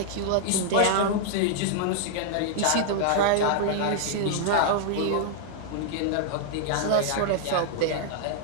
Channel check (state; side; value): different; both; correlation -0.01